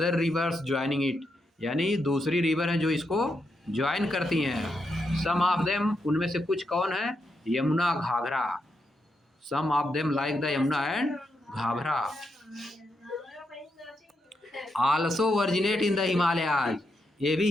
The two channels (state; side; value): normal; both; correlation 0.83